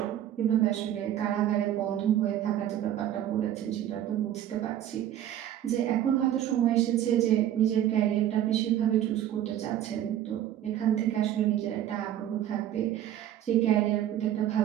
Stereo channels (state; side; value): quieter; left; 11.5 dB